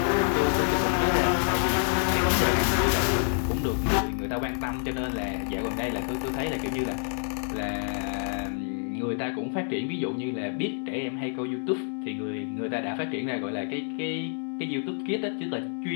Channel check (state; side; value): silent; right; 60 dB below the other